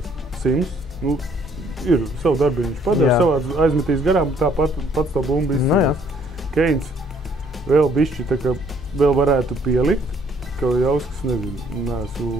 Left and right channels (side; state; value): both; normal; correlation 0.63